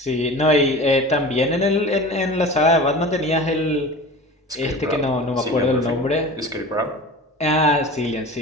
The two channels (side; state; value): both; normal; correlation 0.36